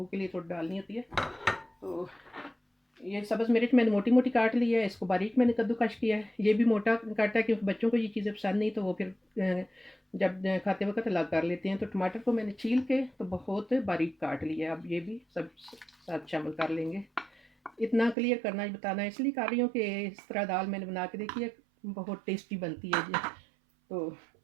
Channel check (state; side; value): drops out; left; at 18.2 s